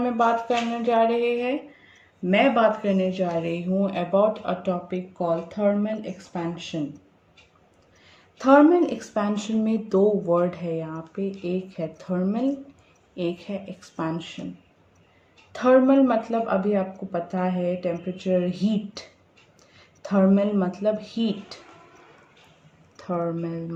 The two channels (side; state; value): both; identical; correlation 1.00